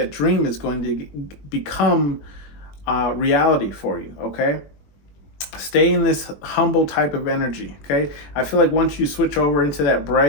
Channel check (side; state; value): right; late; 21 ms